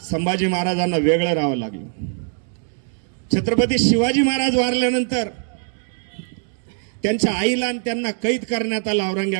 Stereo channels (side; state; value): left; silent; 56 dB below the other